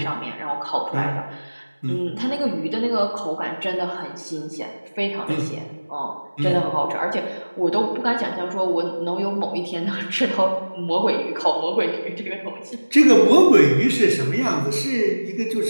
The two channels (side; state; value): both; inverted; correlation -1.00